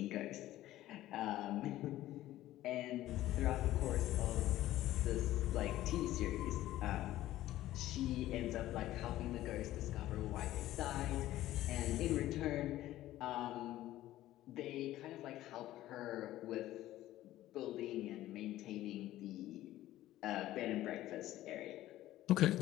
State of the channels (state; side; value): quieter; right; 14.7 dB